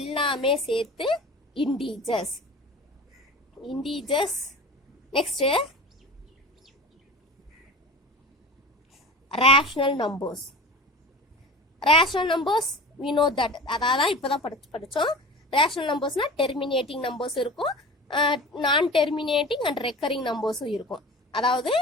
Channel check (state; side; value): normal; both; correlation 0.35